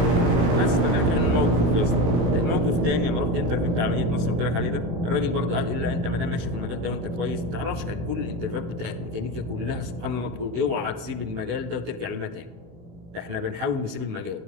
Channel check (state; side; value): late; left; 17 ms